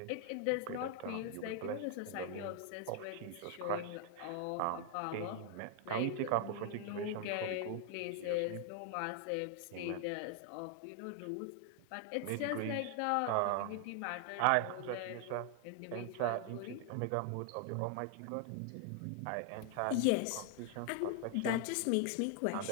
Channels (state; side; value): different; both; correlation 0.00